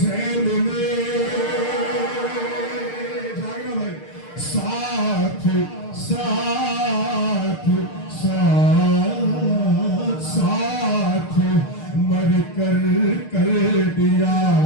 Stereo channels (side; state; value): right; late; 6.6 ms